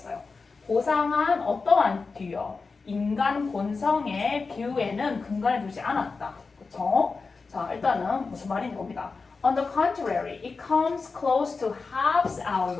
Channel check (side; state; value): right; quieter; 4.4 dB